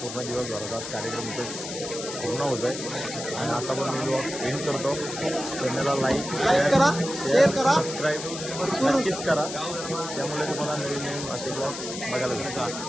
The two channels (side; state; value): left; noise; hiss, 8 dB below the sound